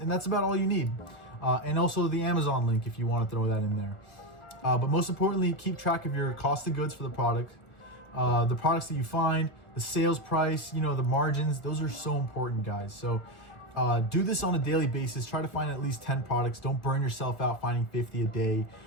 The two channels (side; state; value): right; late; 1.2 ms